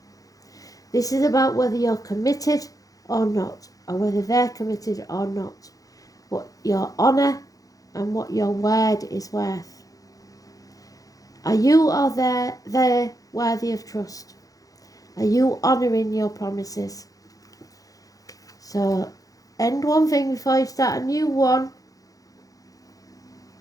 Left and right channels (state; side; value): late; right; 0.17 ms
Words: This is about whether you're committed or not, or whether they're committed or not, what your honour and what your word is worth. Are you or they worthy of trust? Are you honouring your promises? So, end one thing before you start a new one.